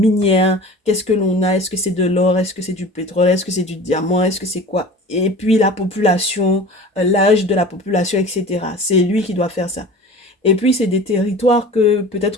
Qu'est-ce que l'on a? Est-ce que c'est de l'or? Est-ce que c'est du pétrole? Est-ce que c'est du diamant? Est-ce que c'est quoi? Et puis la population, l'âge de la population, etc. C'est lui qui doit faire ça. Et puis, c'est des territoires que peut-être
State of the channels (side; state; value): both; normal; correlation 0.39